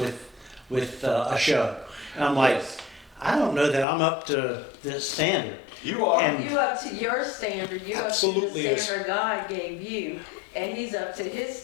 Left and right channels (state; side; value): drops out; right; at 3.9 s